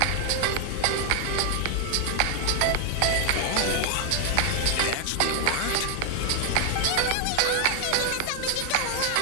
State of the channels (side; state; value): both; different; correlation 0.00